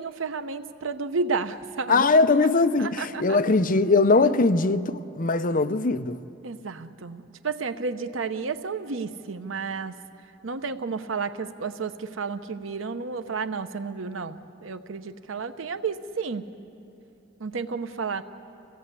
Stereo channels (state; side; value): normal; both; correlation 0.05